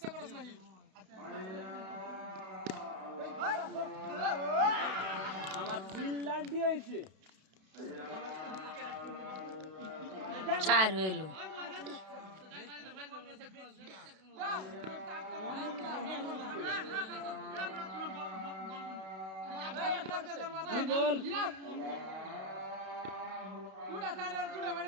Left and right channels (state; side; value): late; left; 32 ms